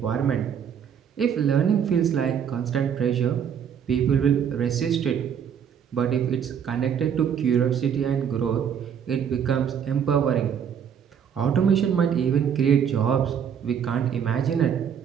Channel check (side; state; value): left; quieter; 8.0 dB